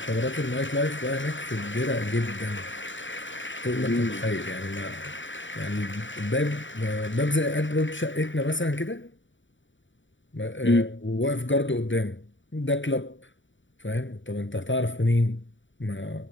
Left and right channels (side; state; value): right; late; 0.55 ms